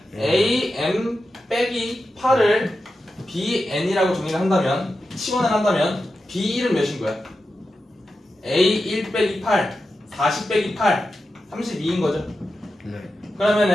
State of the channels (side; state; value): both; normal; correlation 0.91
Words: A M 빼기 8을 B N이라고 정리를 한다면 치환을 한다면 B 1은 몇인 거야? A 1 빼기 8 40 빼기 8 32인 거죠. 네.